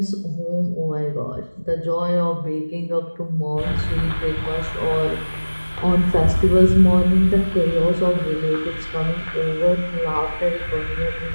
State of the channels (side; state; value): both; inverted; correlation -1.00